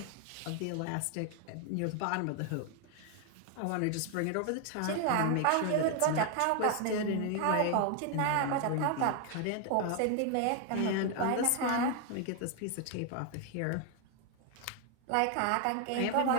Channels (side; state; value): both; different; correlation 0.00